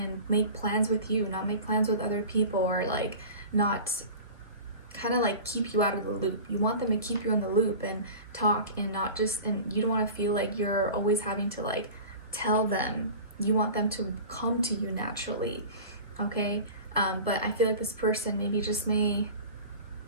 make plans with you, not make plans with other people, or like not kind of like keep you out of the loop. You want them to keep you in the loop and talk, and not just, and you don't want to feel like you're always having to like tell them. You want them to come to you naturally. Okay. But I feel like this person maybe just may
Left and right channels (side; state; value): both; inverted; correlation -0.36